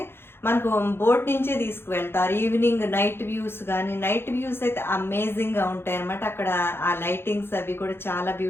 మనకు బోట్ నుంచే తీసుకువెళ్తారు. ఈవినింగ్ నైట్ వ్యూస్ కానీ, నైట్ వ్యూస్ అయితే అమేజింగ్గా ఉంటాయి అనమాట. అక్కడ ఆ లైటింగ్స్ అవి కూడా చాలా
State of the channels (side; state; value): right; late; 0.11 ms